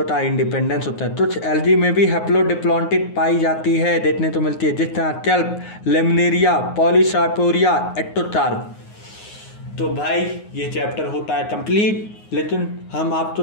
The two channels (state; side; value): late; right; 9.6 ms